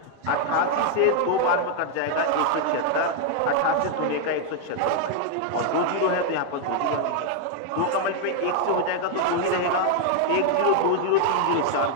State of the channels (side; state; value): both; different; correlation 0.00